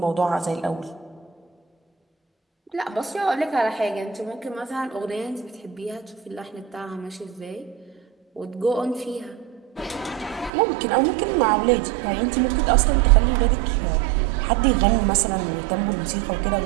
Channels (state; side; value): drops out; left; at 10.5 s